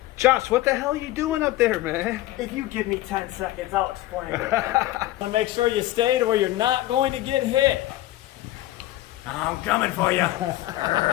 Josh, what the hell are you doing up there, man? If you give me 10 seconds, I'll explain it. So make sure you stay to where you're not going to get hit. I'm coming for you.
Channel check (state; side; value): quieter; right; 16.0 dB